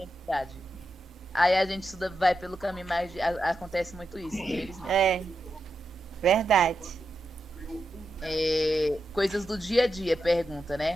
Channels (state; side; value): normal; both; correlation 0.87